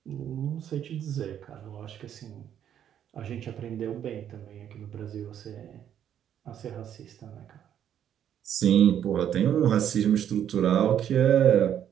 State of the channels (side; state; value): left; quieter; 9.8 dB